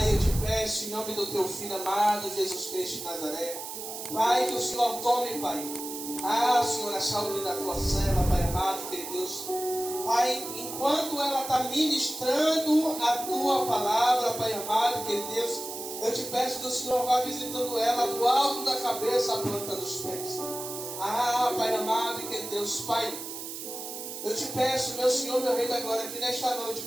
eu te peço em nome do teu Filho amado, Jesus Cristo de Nazaré, Pai, que o Senhor tome, Pai, Senhor, a saúde da tua serva, Pai amado, querido Deus. Pai, enquanto ela está ministrando a tua palavra, Pai amado, querido Deus, eu te peço que o Senhor vá visitando ela do alto da cabeça à planta dos pés. Pai amado, querido Deus, Pai, eu te peço, meu Senhor, meu Rei da Glória, que nesta noite,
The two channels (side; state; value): right; noise; hiss, 8 dB below the sound